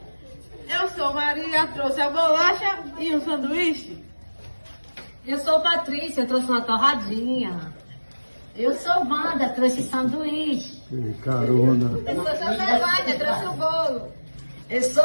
Eu sou Maria, trouxe a bolacha e um sanduíche. Eu sou Patrícia, trouxe uma torradinha. Eu sou Wanda, trouxe sanduíche. Carona. Eu sou José trouxe o bolo. Eu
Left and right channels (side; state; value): both; inverted; correlation -1.00